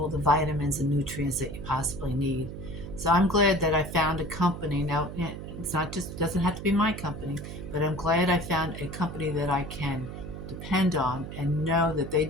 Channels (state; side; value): noise; right; hum, 9 dB below the sound